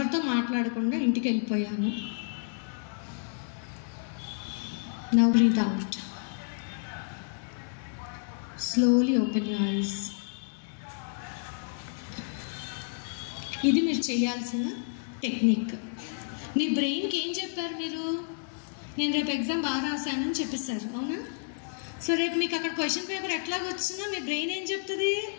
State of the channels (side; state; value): right; silent; digital silence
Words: మాట్లాడకుండా ఇంటికి వెళ్ళిపోయాను. Now breathe out. Slowly open your eyes. ఇది మీరు చేయాల్సిన టెక్నిక్. మీ బ్రెయిన్కి ఏం చెప్పారు మీరు? నేను రేపు ఎగ్జామ్ బాగా రాశానని చెప్పేశారు, అవునా? సో రేపు మీకు అక్కడ క్వశ్చన్ పేపర్ ఎట్లాగ వచ్చినా మీ బ్రెయిన్ ఏం చెప్తుంది?